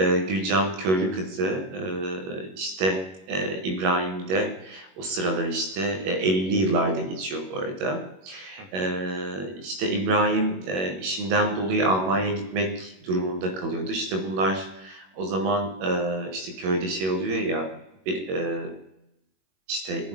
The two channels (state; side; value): late; left; 21 ms